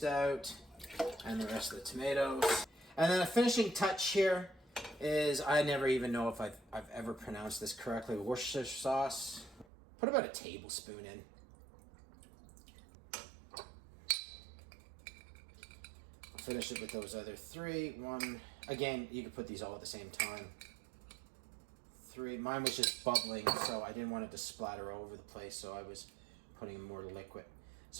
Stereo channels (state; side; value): drops out; left; at 9.7 s